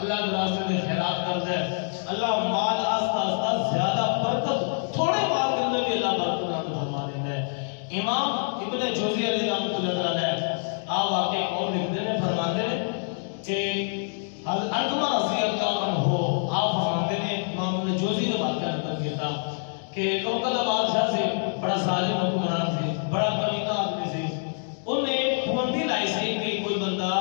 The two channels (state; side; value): silent; right; 61 dB below the other